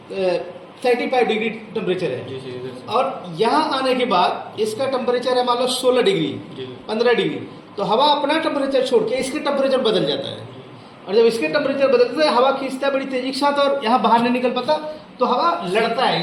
35 डिग्री टेम्परेचर है, और यहाँ आने के बाद इसका टेम्परेचर है मान लो 16 डिग्री, 15 डिग्री। तो हवा अपना टेम्परेचर छोड़ के इसके टेम्परेचर बदल जाता है। और जब इसके टेम्परेचर बदलता है, हवा खींचता है बड़ी तेजी के साथ, और यहाँ बाहर नहीं निकल पाता, तो हवा लड़ता है।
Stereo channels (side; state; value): both; identical; correlation 1.00